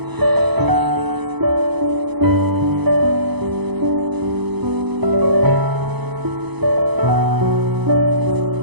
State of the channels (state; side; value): late; left; 0.99 ms